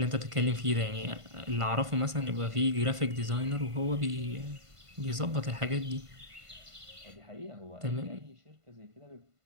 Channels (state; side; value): late; left; 1.5 ms